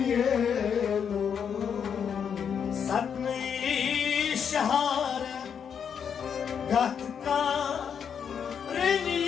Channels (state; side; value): quieter; right; 7.4 dB